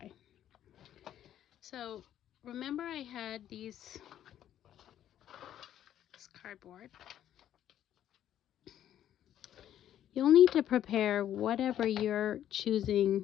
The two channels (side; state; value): right; quieter; 11.1 dB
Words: So remember, I had this cardboard. You'll need to prepare whatever you're